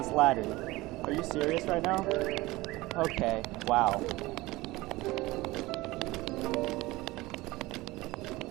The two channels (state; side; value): quieter; left; 20.1 dB